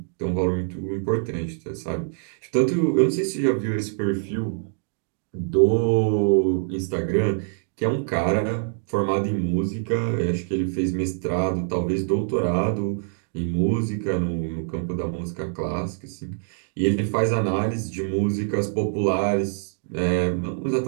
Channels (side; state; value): left; silent; digital silence